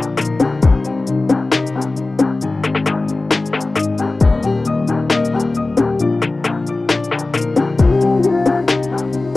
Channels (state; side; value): quieter; right; 3.1 dB